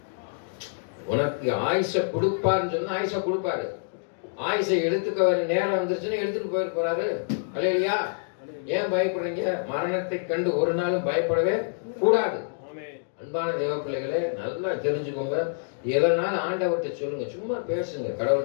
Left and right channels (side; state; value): right; silent; digital silence